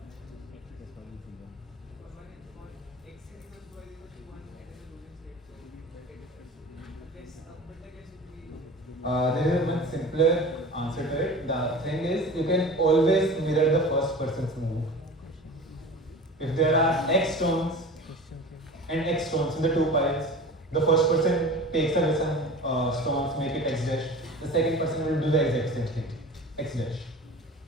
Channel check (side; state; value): both; normal; correlation 0.37